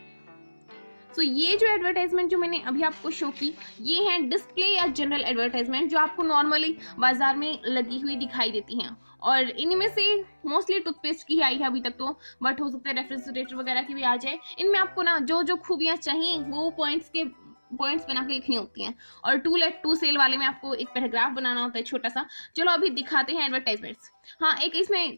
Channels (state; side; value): inverted; both; correlation -1.00